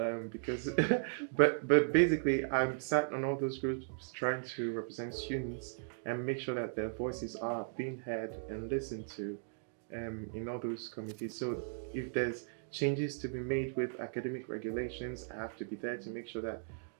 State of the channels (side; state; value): left; silent; digital silence